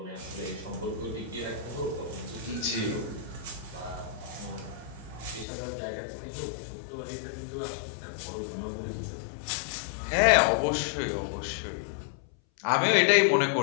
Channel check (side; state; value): right; drops out; at 5.5 s